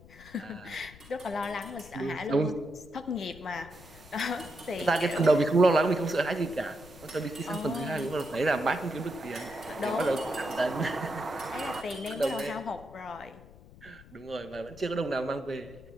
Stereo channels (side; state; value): left; noise; rumble, 20 dB below the sound